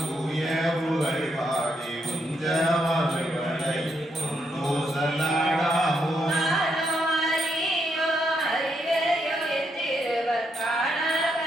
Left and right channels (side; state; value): both; normal; correlation 0.78